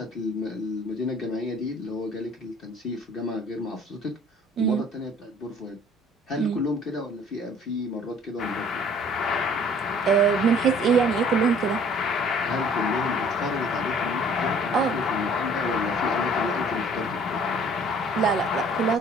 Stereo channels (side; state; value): both; normal; correlation 0.54